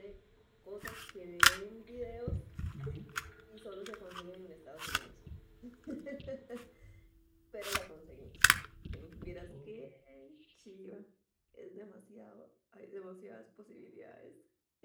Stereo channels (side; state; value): both; identical; correlation 1.00